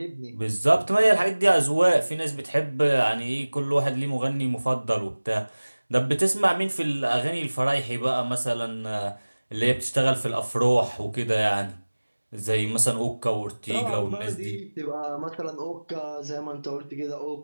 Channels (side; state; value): both; inverted; correlation -1.00